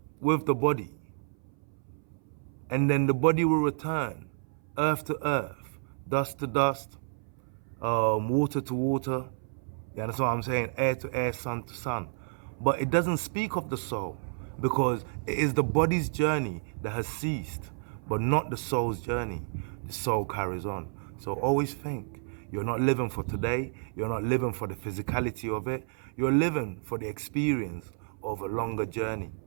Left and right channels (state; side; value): silent; left; 58 dB below the other